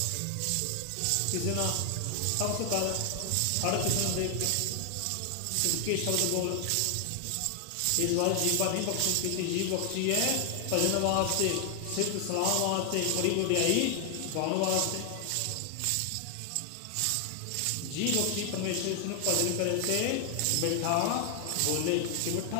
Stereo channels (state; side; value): different; both; correlation 0.00